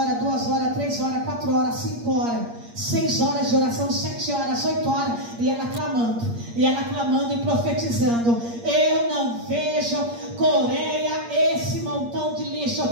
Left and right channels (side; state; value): left; late; 8.5 ms